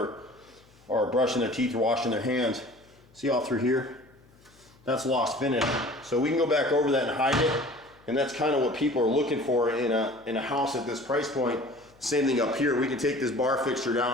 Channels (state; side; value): noise; left; hum, 29 dB below the sound